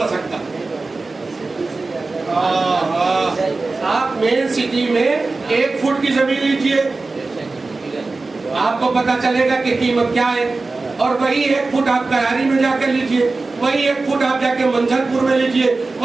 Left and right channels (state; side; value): quieter; left; 3.6 dB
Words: سکتا. آپ مین سٹی میں 1 فٹ کی زمین لیجئے آپ کو پتا چلے گا کہ قیمت کیا ہے. اور وہی 1 فٹ آپ کراری میں جا کر لیجئے, وہی 1 فٹ آپ جا کے منجر پور میں لیجئے,